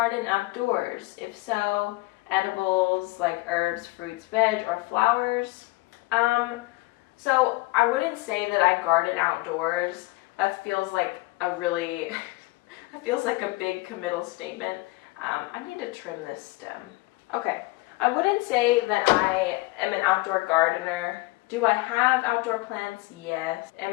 outdoors? If so, edibles like herbs, fruits, veg, or flowers? So I wouldn't say that I garden outdoors. That feels like a really, that feels like a big committal statement. I need to trim this stem. Okay, I wouldn't say that I am an outdoor gardener. Do I have outdoor plants? Yes.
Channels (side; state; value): right; quieter; 22.7 dB